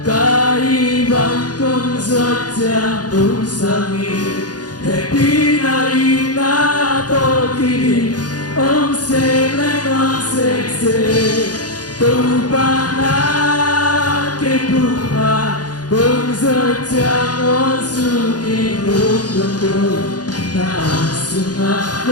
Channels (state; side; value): late; right; 0.69 ms